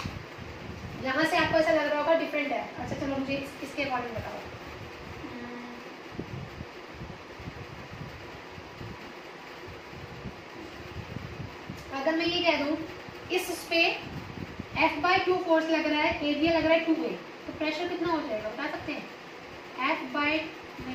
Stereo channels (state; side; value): identical; both; correlation 1.00